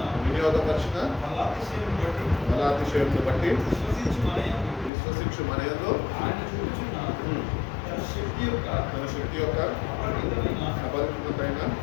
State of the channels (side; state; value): right; drops out; at 4.9 s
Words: వినియోగపరిచిన బలాతిశయమును బట్టి విశ్వసించు మనయందు తన శక్తి యొక్క అపరిమితమైన